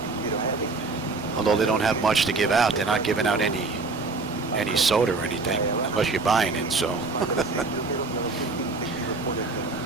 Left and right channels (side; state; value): left; quieter; 3.8 dB